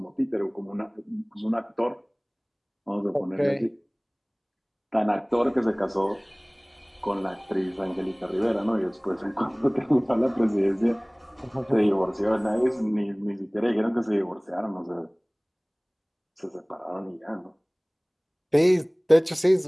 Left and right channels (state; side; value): identical; both; correlation 1.00